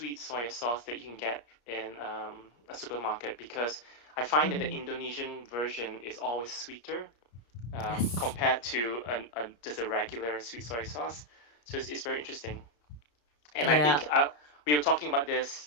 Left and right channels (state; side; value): late; right; 34 ms